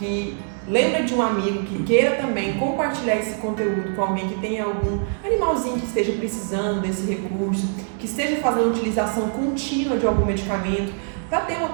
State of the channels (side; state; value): left; silent; 61 dB below the other